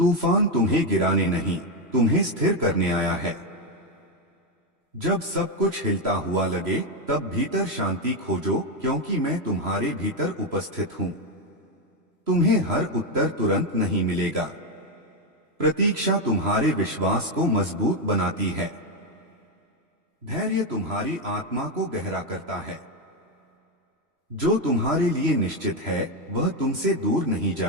तुम्हें गिराने नहीं, तुम्हें स्थिर करने आया है। जब सब कुछ हिलता हुआ लगे तब भीतर शांति खोजो, क्योंकि मैं तुम्हारे भीतर उपस्थित हूं। तुम्हें हर उत्तर तुरंत नहीं मिलेगा। प्रतीक्षा तुम्हारे विश्वास को मजबूत बनाती है। धैर्य तुम्हारी आत्मा को गहरा करता है। जो तुम्हारे लिए निश्चित है वह तुमसे दूर नहीं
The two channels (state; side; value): late; left; 3.0 ms